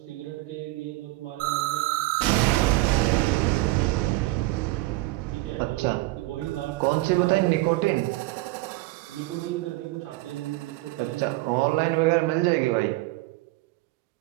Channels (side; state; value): left; quieter; 20.1 dB